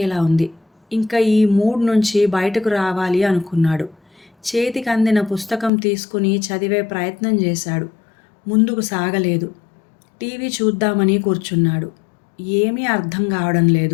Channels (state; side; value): drops out; right; at 5.7 s